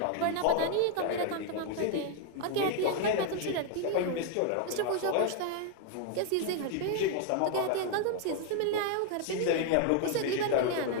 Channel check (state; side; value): different; both; correlation 0.00